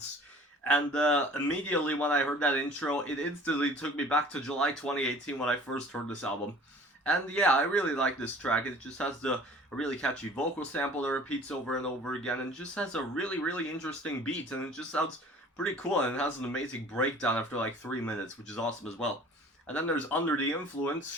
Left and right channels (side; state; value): both; normal; correlation 0.48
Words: and immediately when I heard that intro, it instantly took me back to July 2018 when I first heard this album. And yeah, I really like this track. It just has a really catchy vocal sample that repeats over and over again, and just has a really interesting beat, and it just sounds pretty cool. And it has an amazing breakdown after like 3 minutes, which is awesome as well. And then there's Under the Influence,